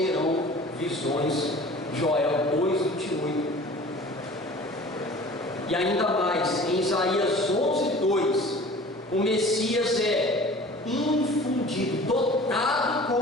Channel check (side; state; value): both; normal; correlation 0.44